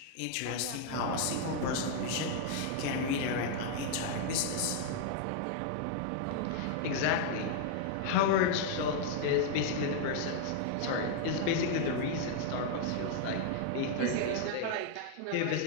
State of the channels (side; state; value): both; different; correlation 0.00